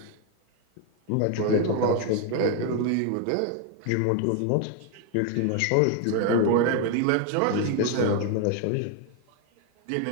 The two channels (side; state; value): both; different; correlation 0.01